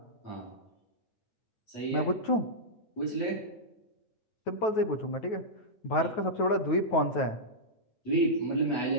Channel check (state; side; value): late; right; 9.3 ms